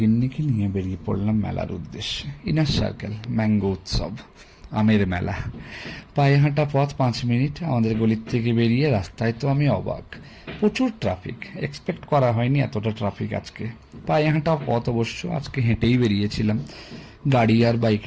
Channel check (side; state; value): both; identical; correlation 1.00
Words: নিয়ে বেরিয়ে পড়লাম মেলার উদ্দেশ্যে। ইনার সার্কেল ম্যাঙ্গো উৎসব, আমের মেলা। পায়ে হাঁটা পথ 5 মিনিট। আমাদের গলির থেকে বেরিয়ে রাস্তায় তো আমি অবাক, প্রচুর ট্রাফিক। এক্সপেক্ট করা হয়নি এতটা ট্রাফিক আজকে। পায়ে হাঁটা পথ অবশ্য, আজকে হেঁটেই বেরিয়েছিলাম, গাড়ি আর বাইক